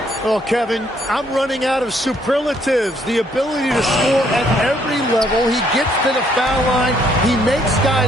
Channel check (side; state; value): both; normal; correlation 0.68